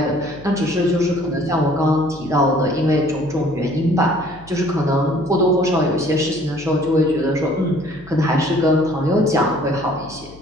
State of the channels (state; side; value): noise; left; hum, 21 dB below the sound